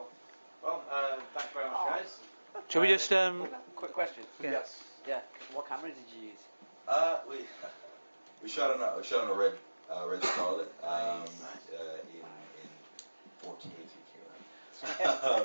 Well, thanks very much, guys. Shall we just Quick question. Yes. Yeah. What camera did you use? We shot on a red Scarlet in 4K.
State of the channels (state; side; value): inverted; both; correlation -1.00